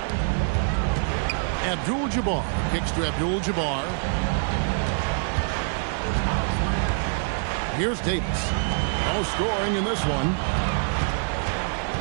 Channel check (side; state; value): left; silent; digital silence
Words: Abdul-Jabbar kicks to Abdul-Jabbar. Here's Davis. No scoring in this one.